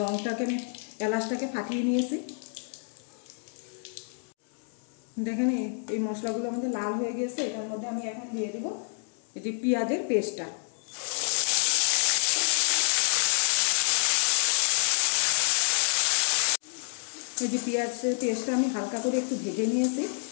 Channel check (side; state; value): right; silent; 59 dB below the other